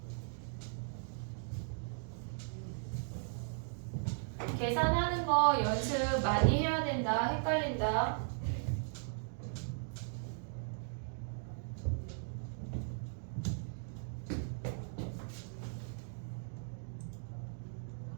계산하는 거 연습 많이 해야 된다. 헷갈린다.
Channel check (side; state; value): left; silent; digital silence